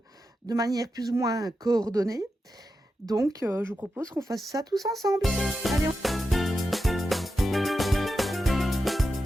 de manière plus ou moins coordonnée. Donc, je vous propose qu'on fasse ça tous ensemble. Allez,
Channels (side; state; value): both; normal; correlation 0.89